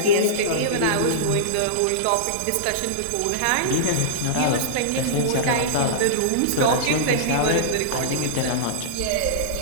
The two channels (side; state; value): both; different; correlation -0.03